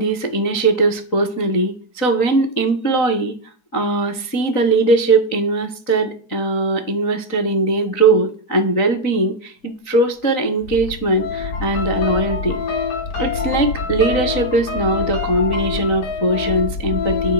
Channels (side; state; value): right; late; 4.0 ms